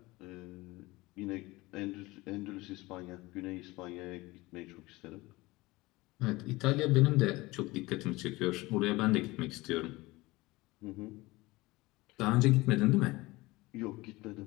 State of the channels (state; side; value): quieter; right; 21.1 dB